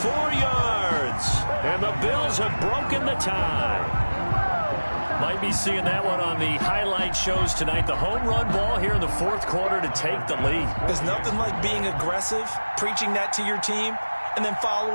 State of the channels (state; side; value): inverted; both; correlation -1.00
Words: yards. And the Bills have broken the tie. Might be seeing that one on the highlight shows tonight. The home run ball here in the fourth quarter to take the lead. There's nothing like being aggressive, preaching that to your team, and then